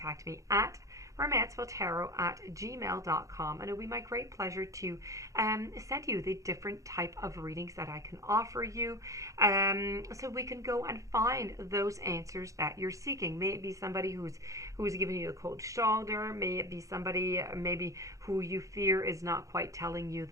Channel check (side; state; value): left; late; 0.16 ms